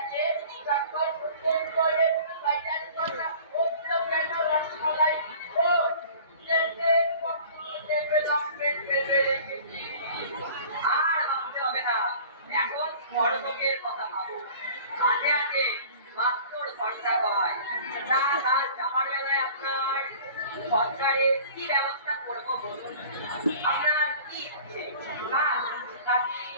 আর ভাবতে হবে না, এখন বড়লোকের কথা ভাবো। আগে আগে মাত্র খরচা হয় তা কাল যাওয়ার বেলায় আপনার সরকারের কি ব্যবস্থা করবো বলুন? আপনার কি ইচ্ছে কাজ নাকি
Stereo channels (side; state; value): both; inverted; correlation -0.45